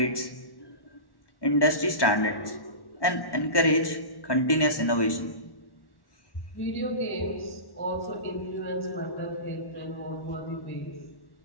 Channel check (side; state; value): right; late; 1.2 ms